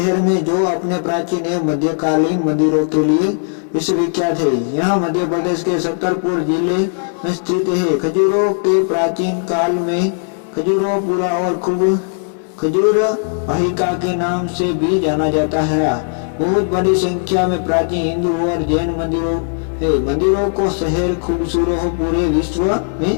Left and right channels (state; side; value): silent; right; 68 dB below the other